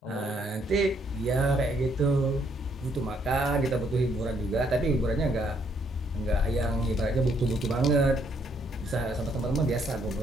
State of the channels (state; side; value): normal; both; correlation 0.70